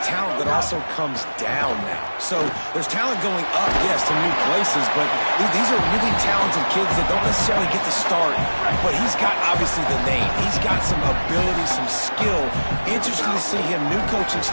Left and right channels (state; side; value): inverted; both; correlation -1.00